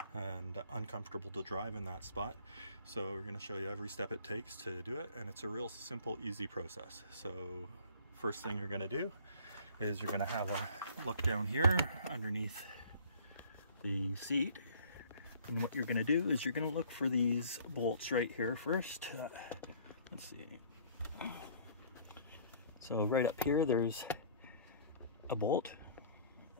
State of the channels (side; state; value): both; inverted; correlation -0.53